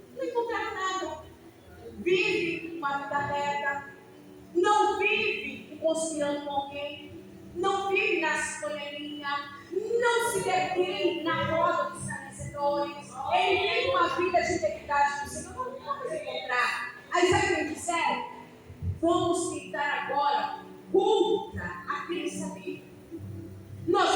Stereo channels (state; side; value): identical; both; correlation 1.00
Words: Não encontraram nada. Vive uma vida reta. Não vive conspirando com alguém. Não vive na panelinha. Não se detém na roda dos escarnecedores. Ele tem uma vida de integridade com o Senhor. Não vamos encontrar. Aí sabe o que eles disseram? Vamos tentar agora contra aquele saber.